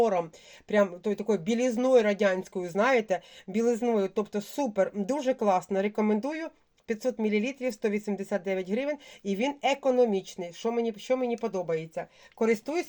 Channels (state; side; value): identical; both; correlation 1.00